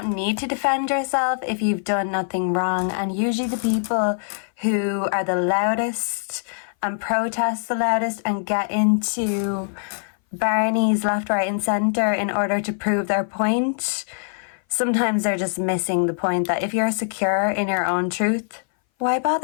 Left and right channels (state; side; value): silent; right; 59 dB below the other